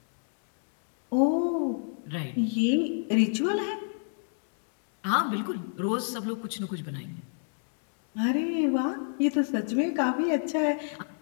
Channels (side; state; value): right; silent; digital silence